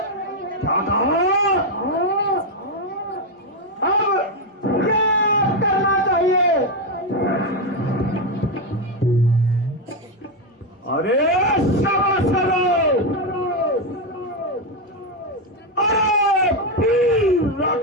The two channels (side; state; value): both; normal; correlation 0.07